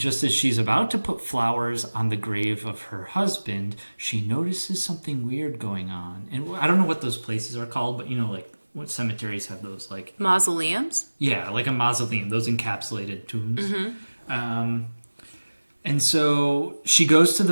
as she's about to put flowers on the grave of her husband, she notices something weird going on. And I don't know what those places are called, but you know, like, what cemeteries have those, like... Mausoleums? Yeah, like a mausoleum, those encapsulated tombs. Mm-hmm. And so she goes to the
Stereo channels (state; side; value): inverted; both; correlation -1.00